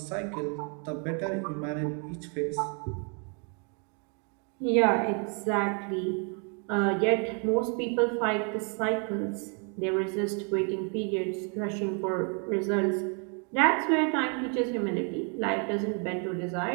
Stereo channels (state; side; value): quieter; left; 38.4 dB